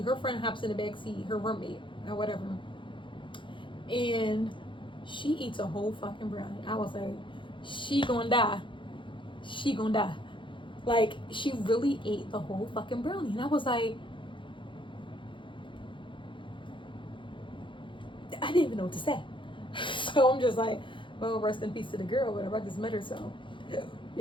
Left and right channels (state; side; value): late; right; 0.24 ms